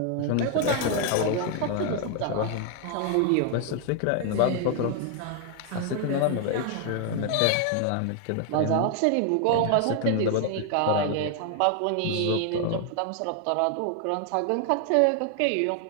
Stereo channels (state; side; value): different; both; correlation 0.00